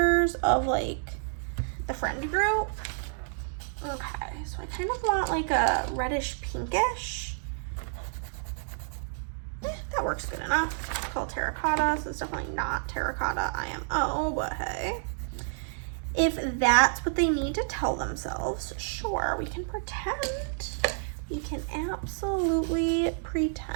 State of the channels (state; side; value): silent; left; digital silence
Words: of like the friend group. Okay, so I kind of want like a reddish pinkish. That works good enough. It's called terracotta, so it's definitely not terracotta IMO, but hey. If that's what they need to tell themselves, sure, we can pretend. We can absolutely